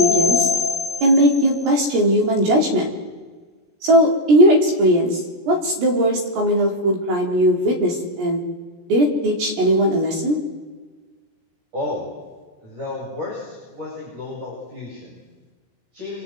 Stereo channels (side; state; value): left; late; 17 ms